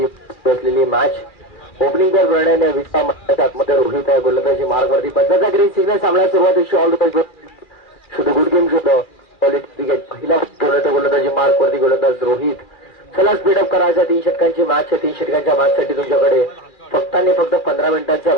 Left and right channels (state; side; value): late; right; 2.4 ms